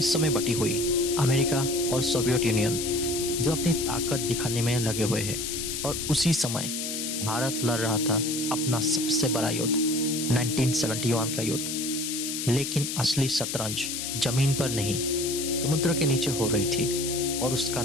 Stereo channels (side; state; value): left; noise; hiss, 4 dB below the sound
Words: में बटी हुई, अमेरिका और सोवियत यूनियन जो अपनी ताकत दिखाने में लगे हुए हैं, और उसी समय भारत लड़ रहा था अपना सबसे बड़ा युद्ध, 1971 का युद्ध। लेकिन असली शतरंज जमीन पर नहीं, समुद्र के नीचे हो रही थी, और उसका